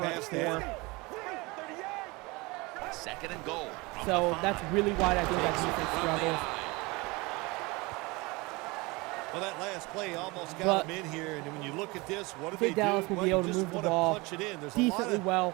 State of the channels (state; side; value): quieter; left; 24.5 dB